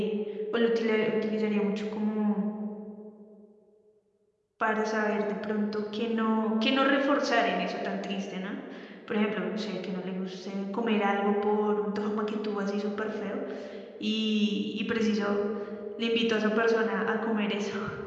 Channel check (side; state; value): both; identical; correlation 1.00